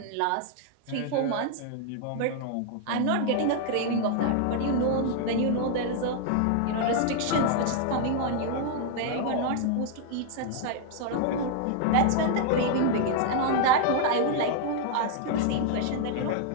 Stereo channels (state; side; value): different; both; correlation 0.00